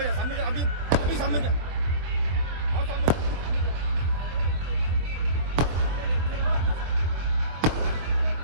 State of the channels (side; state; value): left; late; 24 ms